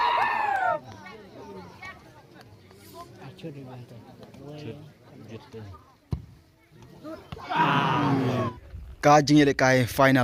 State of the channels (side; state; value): both; identical; correlation 1.00